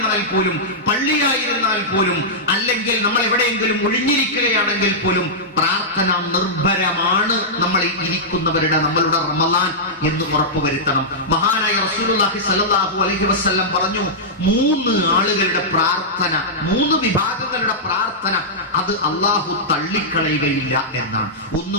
പോലും, പള്ളിയായിരുന്നാൽ പോലും, അല്ലെങ്കിൽ നമ്മൾ എവിടെയെങ്കിലും ഒഴിഞ്ഞിരിക്കുകയാണെങ്കിൽ പോലും പ്രാർത്ഥന നിർഭരമാണ് നമ്മൾ ഇരിക്കുന്നവരുടെ, നമ്മളുടെ റമദാൻ എന്ന് ഉറപ്പുവരുത്തണം. മഹാനായ റസൂലുള്ളാഹി സ്വല്ലല്ലാഹു അലൈഹി വസല്ലം പറഞ്ഞു, 3 ആളുകളുടെ പ്രാർത്ഥന, 3 വിഭാഗങ്ങളുടെ പ്രാർത്ഥന അത് അള്ളാഹു തള്ളിക്കളയുകയില്ല എന്നാണ്.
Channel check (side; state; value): both; normal; correlation -0.11